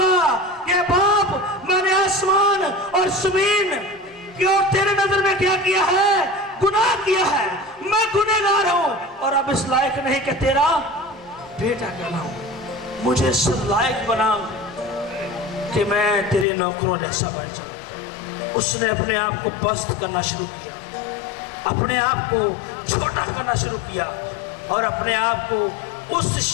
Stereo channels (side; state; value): right; drops out; at 16.4 s